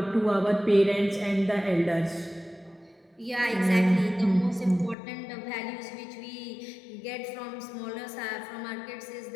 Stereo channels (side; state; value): right; drops out; at 5.0 s